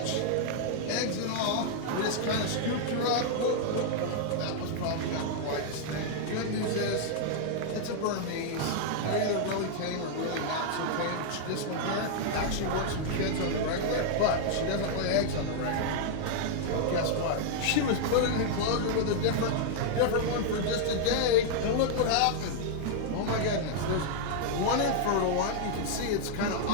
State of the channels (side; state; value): both; different; correlation -0.01